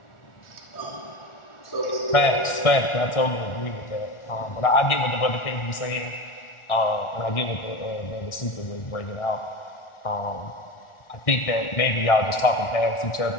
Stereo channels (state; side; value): late; right; 1.4 ms